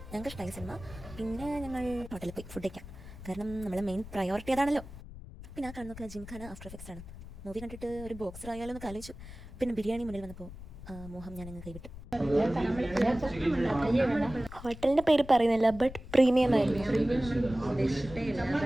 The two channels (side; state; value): left; noise; rumble, 14 dB below the sound